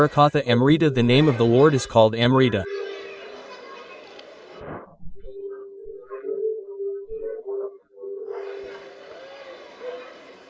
Amrita. The name of the Lord is called Amrita.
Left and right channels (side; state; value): both; identical; correlation 1.00